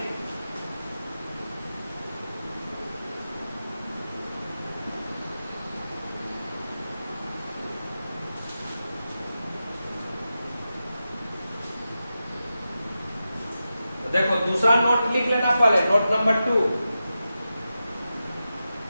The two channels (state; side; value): inverted; both; correlation -0.91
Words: तो देखो दूसरा नोट लिख लेना पहले, note number 2।